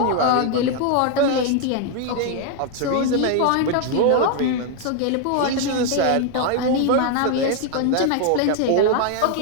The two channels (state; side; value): different; both; correlation 0.00